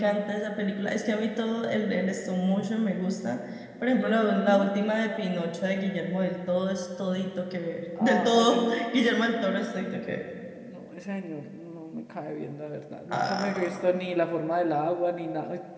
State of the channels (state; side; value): identical; both; correlation 1.00